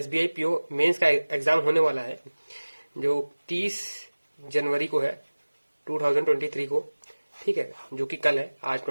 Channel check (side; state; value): both; inverted; correlation -1.00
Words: पीओ मेंस का एग्जाम होने वाला है, जो 30 जनवरी को है 2023 को। ठीक है, जो कि कल है, आज